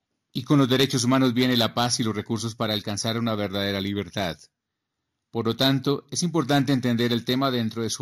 Y con los derechos humanos viene la paz y los recursos para alcanzar una verdadera libertad. Por lo tanto, es importante entender el tema dentro de su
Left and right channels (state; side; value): identical; both; correlation 1.00